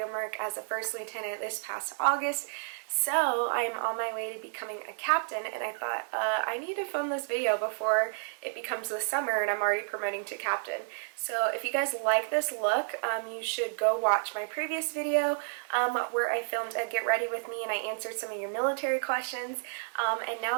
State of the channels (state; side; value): silent; left; digital silence